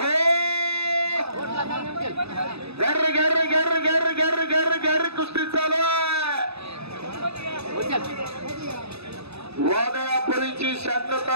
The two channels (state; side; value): late; left; 0.79 ms